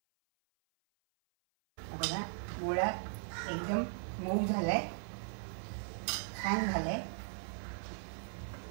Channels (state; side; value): silent; left; 52 dB below the other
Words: बघा गोळा एकदम मऊ झालाय, छान झालंय.